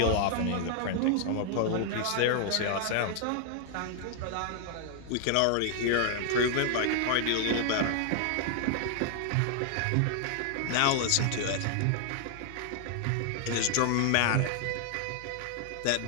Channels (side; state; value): both; different; correlation 0.00